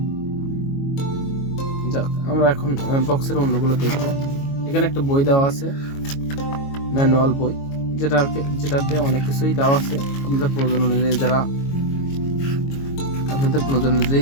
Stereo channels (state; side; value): late; right; 22 ms